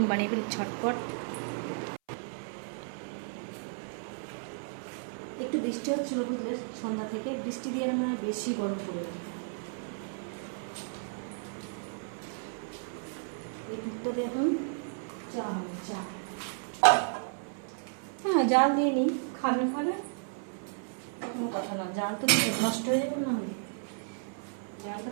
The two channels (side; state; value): left; silent; 56 dB below the other